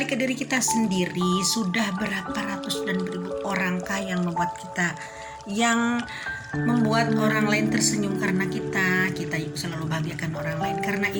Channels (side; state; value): both; identical; correlation 1.00